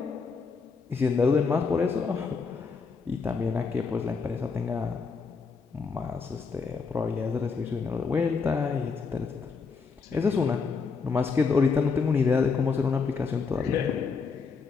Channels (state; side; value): quieter; right; 5.1 dB